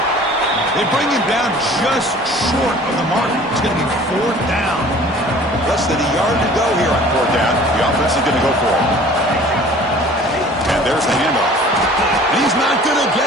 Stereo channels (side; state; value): both; normal; correlation 0.48